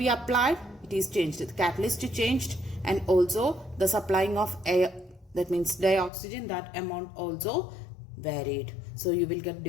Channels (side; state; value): right; drops out; at 6.1 s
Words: applied, it is changed. The catalyst changed and also the supplying of air, that means dioxygen, that amount also varied. So you will get